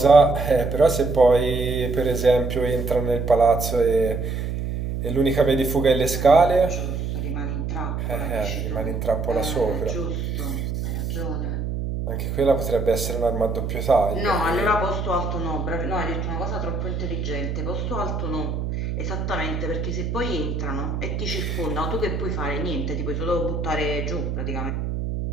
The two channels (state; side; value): noise; right; hum, 3 dB below the sound